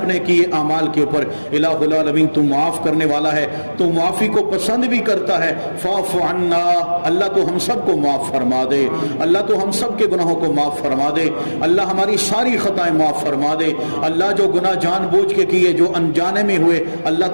کیے اعمال کے اوپر، الہ العالمین تو معاف کرنے والا ہے، تو معافی کو پسند بھی کرتا ہے، فاعف عنا، اللہ تو ہم سب کو معاف فرما دے، اللہ تو ہم سب کے گناہوں کو معاف فرما دے، اللہ ہماری ساری خطائیں معاف فرما دے، اللہ جو گناہ جان بوجھ کے کیے، جو انجانے میں ہوئے، اللہ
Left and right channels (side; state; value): both; inverted; correlation -1.00